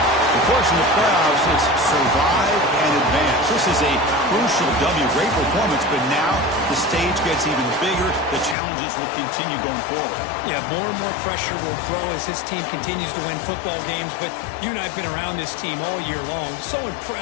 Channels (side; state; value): right; drops out; at 8.6 s